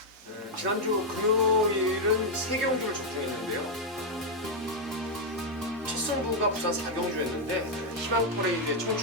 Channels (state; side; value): normal; both; correlation 0.00